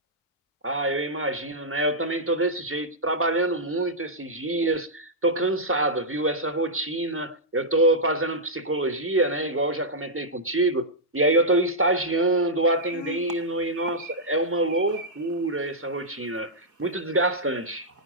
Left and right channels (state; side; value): normal; both; correlation -0.08